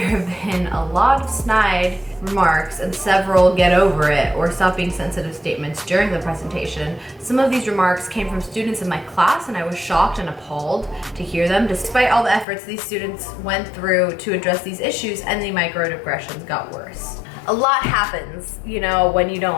have been a lot of snide remarks and several get over it or stop being sensitive statements during the presentation. Some of these remarks came from students in my class and I was shocked and appalled to hear them despite all the efforts these students went through to address these issues, and the microaggressions got worse. A lot happens, you know, when you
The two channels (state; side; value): drops out; right; at 12.5 s